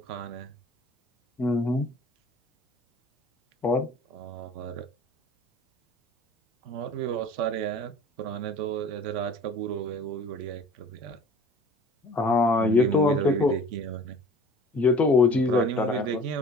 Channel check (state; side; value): normal; both; correlation 0.46